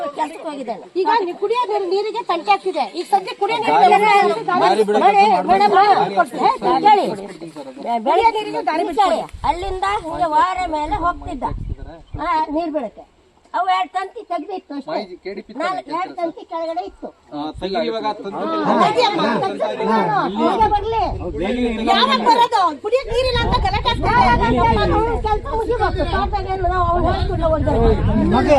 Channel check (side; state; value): both; identical; correlation 1.00